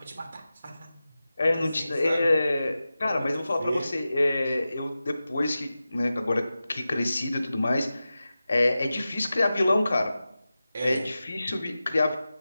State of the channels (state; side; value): inverted; both; correlation -0.94